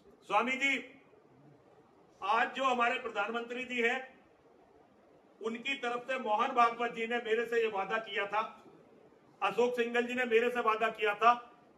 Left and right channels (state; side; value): identical; both; correlation 1.00